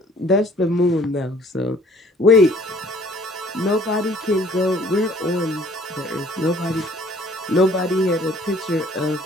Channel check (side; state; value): both; normal; correlation 0.55